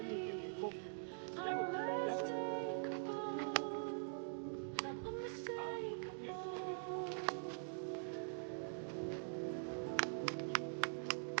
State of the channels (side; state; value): left; silent; digital silence